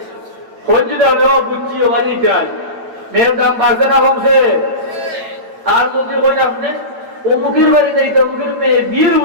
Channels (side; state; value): left; late; 8.9 ms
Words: খোঁজ যদি হবে ও বুঝছি ও বাড়ি চাই মেয়ের দাম বাড়ছে না কমছে আর যদি কই আপনি অমুকের বাড়িতে অমুকের মেয়ে বিয়ের